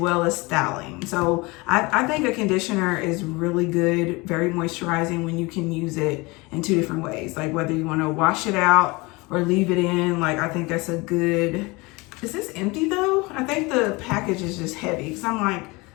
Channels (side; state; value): right; quieter; 24.8 dB